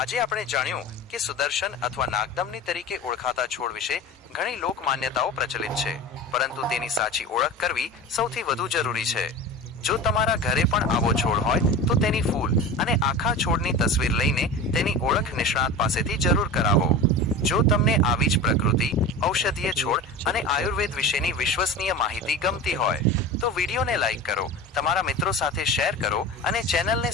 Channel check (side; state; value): both; normal; correlation 0.31